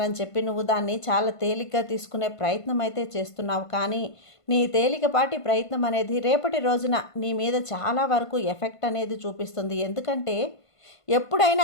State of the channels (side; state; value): right; late; 1.5 ms